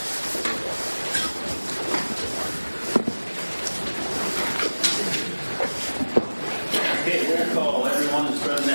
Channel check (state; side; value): inverted; both; correlation -1.00